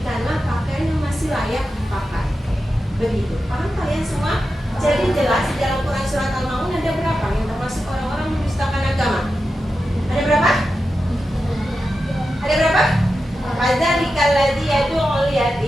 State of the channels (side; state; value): both; normal; correlation 0.90